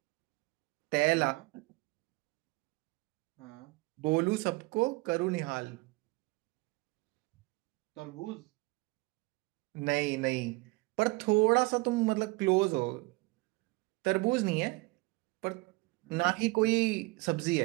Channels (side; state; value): left; quieter; 24.3 dB